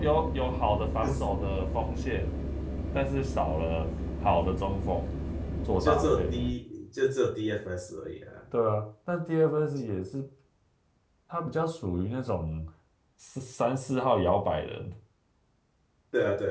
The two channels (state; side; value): identical; both; correlation 1.00